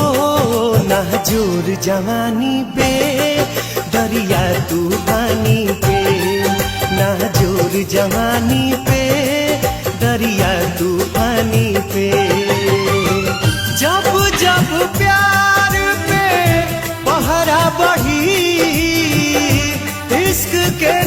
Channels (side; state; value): both; identical; correlation 1.00